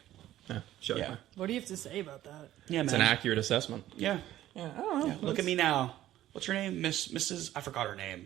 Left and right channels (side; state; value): left; quieter; 13.7 dB